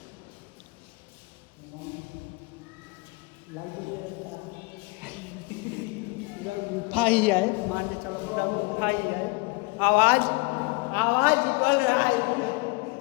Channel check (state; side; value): quieter; right; 26.9 dB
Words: पूरा गुफा ही है, मान के चलो पूरा गुफा ही है। आवाज बोल रहा है,